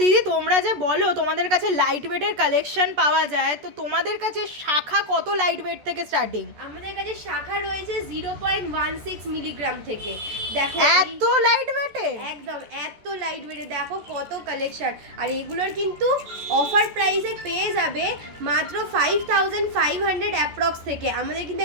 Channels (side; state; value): left; late; 14 ms